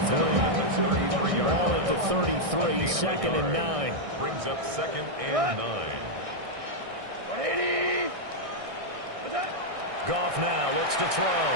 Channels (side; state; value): left; late; 1.6 ms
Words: Ball at the 33, 2nd and 9. Brings up 2nd and 9. Goff now looks to throw.